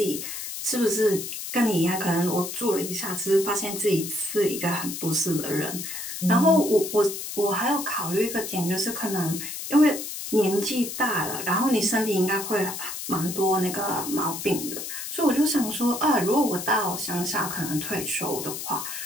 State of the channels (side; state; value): left; noise; hiss, 7 dB below the sound